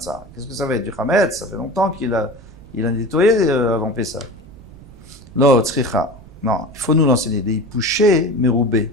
Qu'est-ce que ça va être? Du chametz? Ça fait longtemps qu'il a nettoyé avant Pessah. Lo, tzricha. Non, il faut nous l'enseigner. Des pouchés,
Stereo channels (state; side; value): noise; right; rumble, 20 dB below the sound